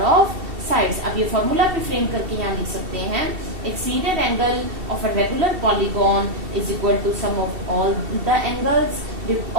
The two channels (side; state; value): left; late; 2.7 ms